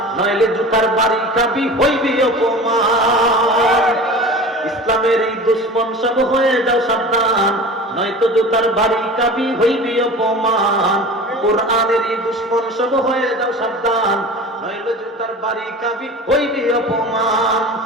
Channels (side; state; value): both; normal; correlation 0.36